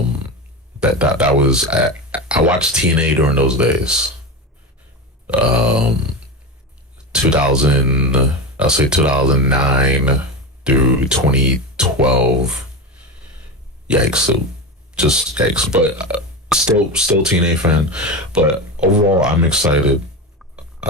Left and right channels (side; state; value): both; normal; correlation 0.22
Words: That was I watched TNA during those days. 2009 through 2012. Yikes! So just yikes. But still TNA fan. But overall, I'm excited.